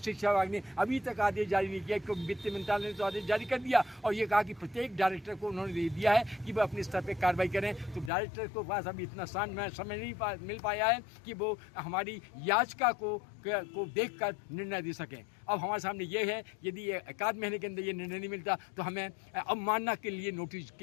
विभाग ने अभी तक आदेश जारी नहीं किया, क्योंकि वित्त मंत्रालय ने तो आदेश जारी कर दिया और ये कहा कि प्रत्येक डायरेक्टर को उन्होंने दे दिया है कि वह अपने स्तर पर कार्रवाई करें। तो डायरेक्टर को पास अभी इतना समय नहीं मिल पाया है कि वो हमारी याचिका को देखकर निर्णय दे सकें। अब हमारे सामने ये है, यदि 1 महीने के अंदर ये निर्णय नहीं मिलता तो हमें अवमानना के लिए नोटिस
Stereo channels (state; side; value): drops out; right; at 8.1 s